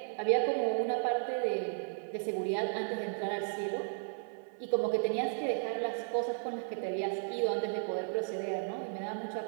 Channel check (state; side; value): silent; left; 55 dB below the other